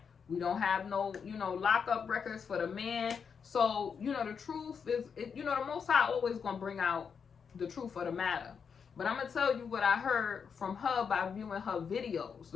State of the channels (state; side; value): quieter; right; 6.4 dB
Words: We don't have no, lockup records for the man. So, the truth is, the Most High always going to bring out the truth of the matter. But I'm going to tell you what I heard from her by viewing her videos,